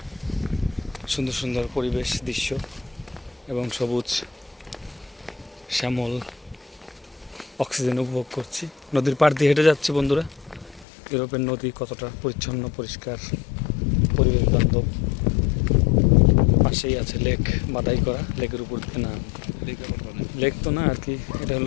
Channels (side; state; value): right; drops out; at 10.9 s